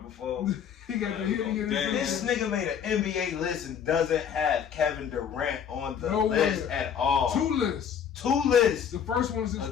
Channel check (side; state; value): right; quieter; 8.0 dB